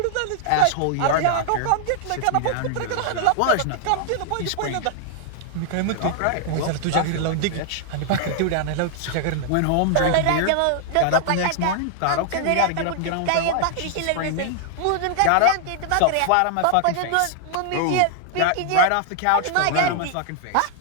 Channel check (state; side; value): different; both; correlation -0.01